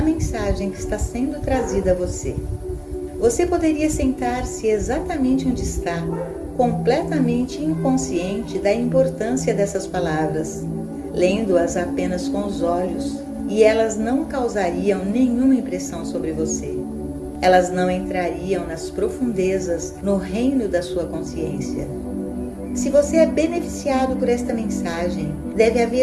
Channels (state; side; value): identical; both; correlation 1.00